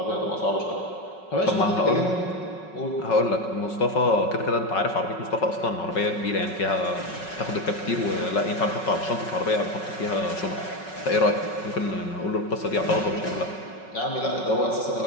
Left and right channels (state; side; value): late; right; 5.4 ms